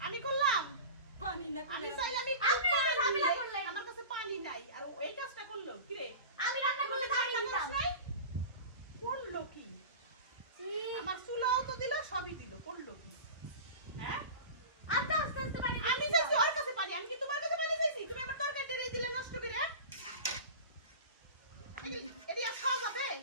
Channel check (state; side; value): inverted; both; correlation -0.33